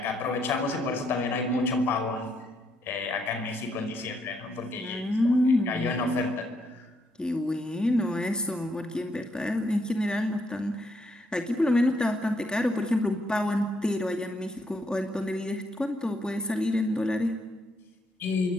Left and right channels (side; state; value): both; normal; correlation 0.75